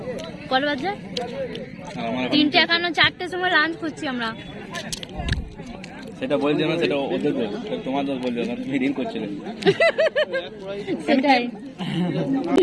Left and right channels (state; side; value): identical; both; correlation 1.00